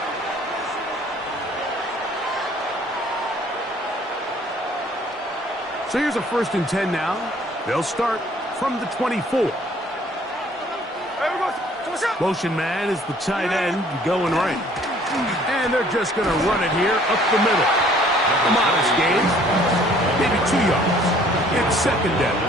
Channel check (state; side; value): normal; both; correlation 0.57